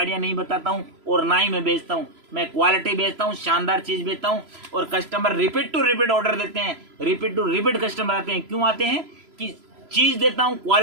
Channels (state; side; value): late; left; 3.0 ms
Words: नहीं बताता हूँ, और ना ही मैं बेचता हूँ। मैं क्वालिटी बेचता हूँ, शानदार चीज बेचता हूँ, और customer repeat to repeat order देते हैं, रिपीट टू रिपीट कस्टमर आते हैं। क्यों आते हैं कि चीज देता हूँ,